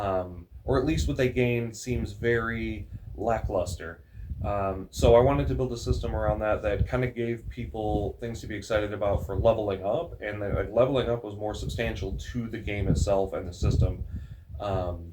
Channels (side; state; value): both; identical; correlation 1.00